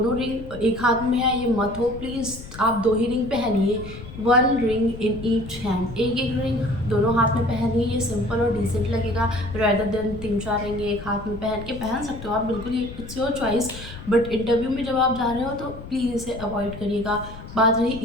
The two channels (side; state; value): left; noise; rumble, 13 dB below the sound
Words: रिंग एक हाथ में है, ये मत हो प्लीज़। आप 2 ही रिंग पहनिए, 1 रिंग इन ईच हैंड, एक एक रिंग दोनों हाथ में पहनिए। ये सिंपल और डिसेंट लगेगा रेदर देन 3-4 रिंग एक हाथ में पहन सकते हो आप, बिल्कुल ही it's your choice. But interview में जब आप जा रहे हो तो प्लीज़ इसे अवॉइड करिएगा। बात रही